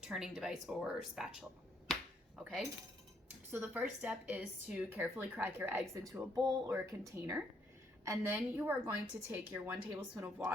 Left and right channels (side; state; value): both; normal; correlation 0.71